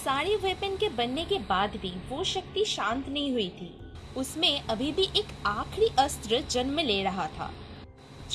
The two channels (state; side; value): identical; both; correlation 1.00